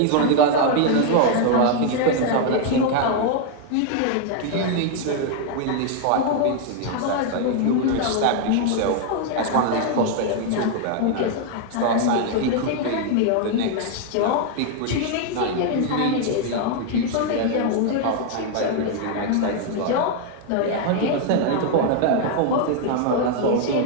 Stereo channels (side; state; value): both; different; correlation 0.00